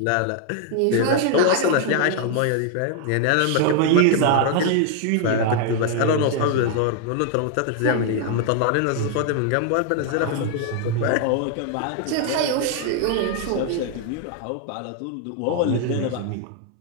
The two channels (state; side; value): different; both; correlation 0.00